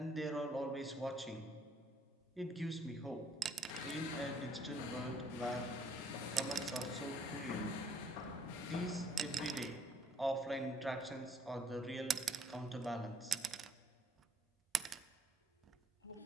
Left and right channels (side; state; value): both; normal; correlation 0.62